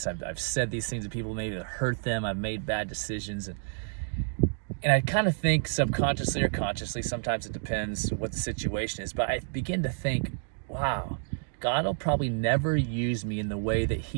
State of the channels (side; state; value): left; silent; digital silence